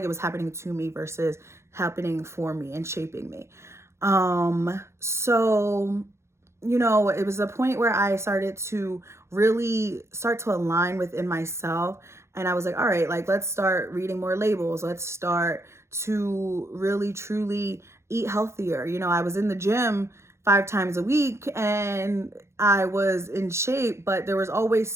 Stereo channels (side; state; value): left; late; 0.13 ms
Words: it was happening to me versus happening for me and shaping me. So it was a point where I started to really start to align within myself. And I was like, all right, like, let's start reading more labels. Let's start to really, truly eat healthier. I was in the gym 5 times a week and I was in shape, but there was always